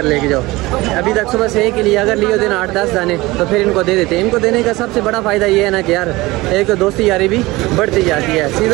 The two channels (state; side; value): quieter; left; 20.6 dB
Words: लेके जाओ। अभी तक सुबह से एक के लिए अगर लियो दिन 8-10 दाने तो फिर इनको दे देते हैं। इनको देने का सबसे बड़ा फ़ायदा ये है ना कि यार एक तो दोस्ती यारी भी बढ़ती जाती है।